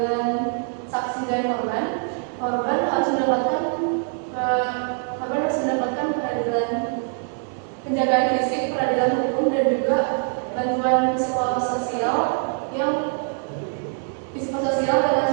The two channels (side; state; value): left; silent; 55 dB below the other